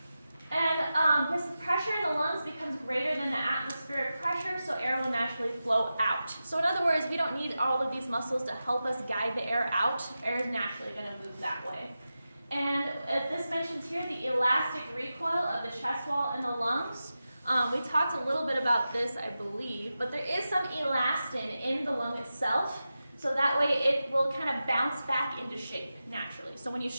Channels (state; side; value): inverted; both; correlation -0.92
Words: And this pressure in the lungs becomes greater than the atmospheric pressure, so air will naturally flow out. So in other words, we don't need all of these muscles to help us guide the air out. Air is naturally going to move that way. And this mentions here the elastic recoil of the chest wall and the lungs. We talked a little bit about this, I believe, but there is some elastin in the lung itself, so that way it will kind of bounce back into shape naturally. So when you